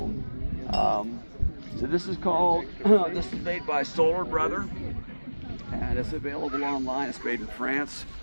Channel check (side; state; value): both; inverted; correlation -1.00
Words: so this is made by Solar Brother, and it's available online. It's made in France.